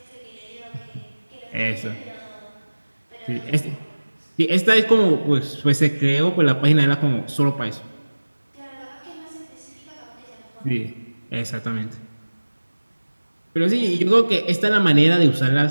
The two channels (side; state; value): both; inverted; correlation -1.00